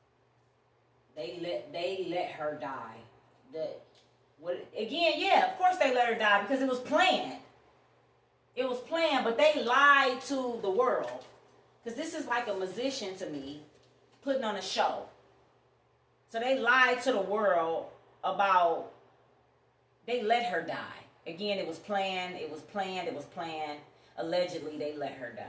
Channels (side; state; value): both; identical; correlation 1.00